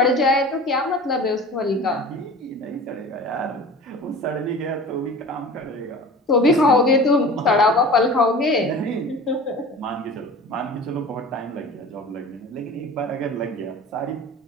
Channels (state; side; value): normal; both; correlation 0.39